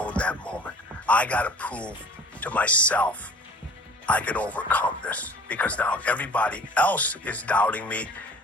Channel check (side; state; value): both; normal; correlation 0.47